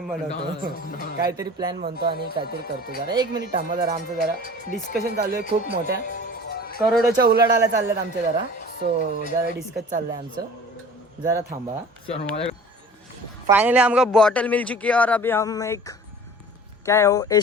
बनवतो काहीतरी प्लॅन बनतो आणि काहीतरी करतो। जरा एक मिनिट थांबा जरा, आमचं जरा डिस्कशन चालू आहे, खूप मोठ्या करोडोच्या उलाढाल्या चालल्यात आमच्या जरा। सो जरा डिस्कस चाललंय आमचं, जरा थांबा। फाइनली हमको बॉटल मिल चुकी है और अभी हम एक क्या है वो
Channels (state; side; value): normal; both; correlation 0.43